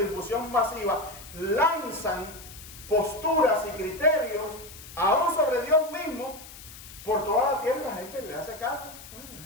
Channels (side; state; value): left; noise; hiss, 16 dB below the sound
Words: difusión masiva, lanzan posturas y criterios aún sobre Dios mismo por toda la tierra y la gente le hace caso?